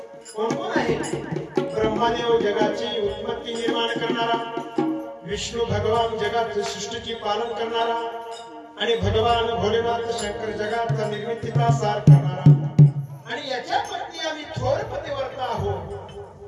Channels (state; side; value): identical; both; correlation 1.00